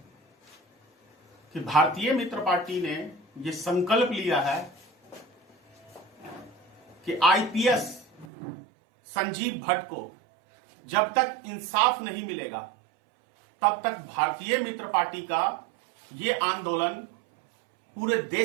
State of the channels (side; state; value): left; drops out; at 8.2 s